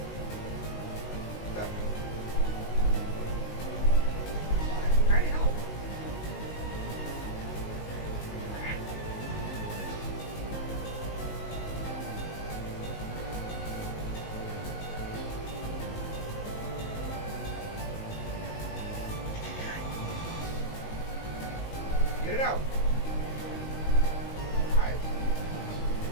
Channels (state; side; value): late; right; 19 ms